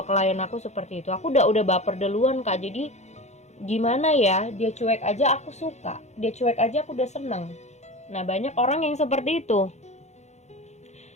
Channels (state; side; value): late; right; 0.33 ms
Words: klien aku seperti itu. Aku udah baper duluan Kak, jadi gimana ya, dia cuek aja aku suka, dia cuek aja aku udah seneng. Nah, banyak orang yang seperti itu.